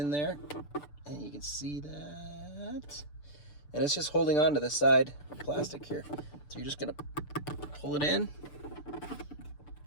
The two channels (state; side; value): late; right; 6.8 ms